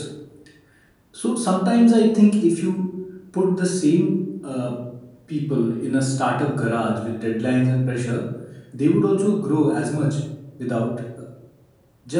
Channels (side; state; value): both; identical; correlation 1.00